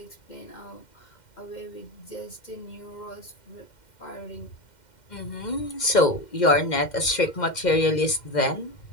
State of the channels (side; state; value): right; late; 2.1 ms